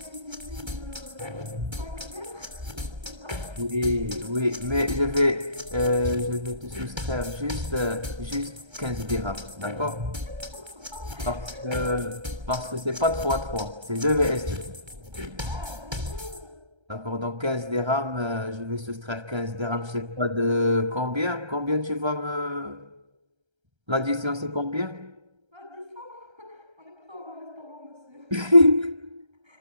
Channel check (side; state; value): left; late; 1.3 ms